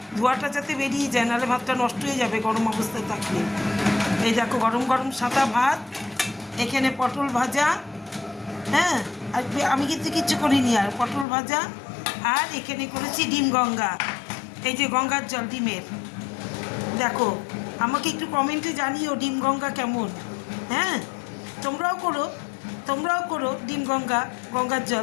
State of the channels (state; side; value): drops out; right; at 11.2 s